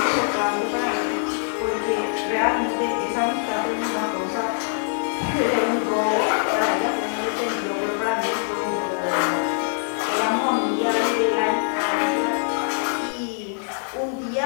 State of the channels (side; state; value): right; silent; 63 dB below the other